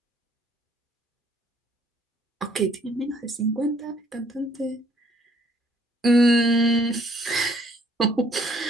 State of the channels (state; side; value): normal; both; correlation 0.64